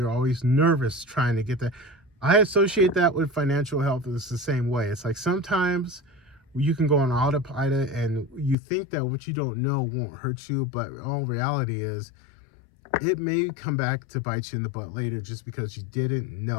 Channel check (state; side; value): drops out; right; at 8.6 s